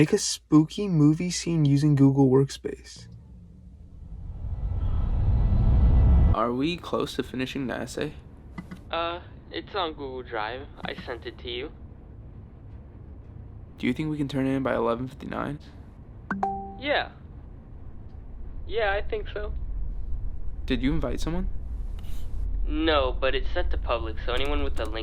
a spooky movie scene using Google Workspace. Are we close to finishing the essay? It's on Google Drive. I sent it to you. Do you think we can turn it in by 11:59? Yeah. Yeah, I think so. Did you invite someone? No, but it's set to public, so anyone with the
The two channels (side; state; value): both; identical; correlation 1.00